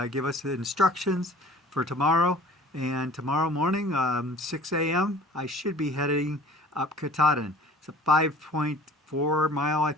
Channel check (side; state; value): both; normal; correlation 0.48